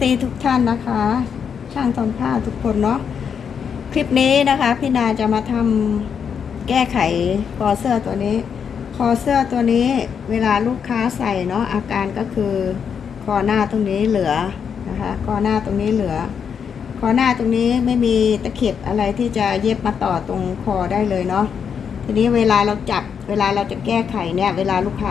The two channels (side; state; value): right; quieter; 7.1 dB